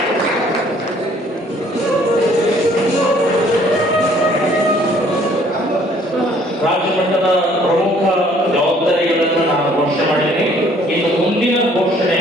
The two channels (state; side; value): normal; both; correlation 0.60